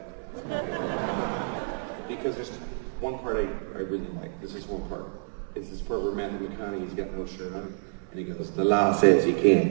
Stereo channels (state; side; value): silent; left; 59 dB below the other